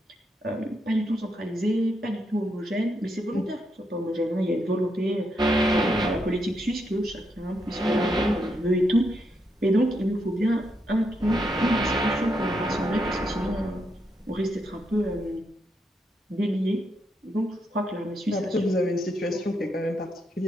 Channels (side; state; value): both; normal; correlation 0.80